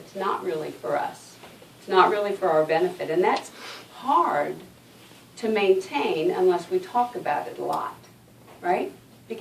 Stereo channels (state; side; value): identical; both; correlation 1.00